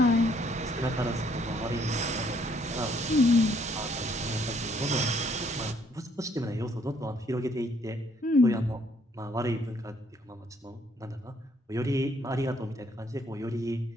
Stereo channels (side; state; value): both; normal; correlation 0.66